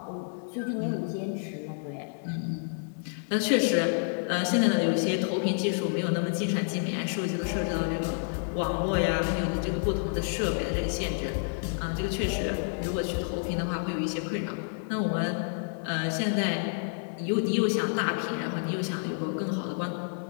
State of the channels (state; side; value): silent; right; digital silence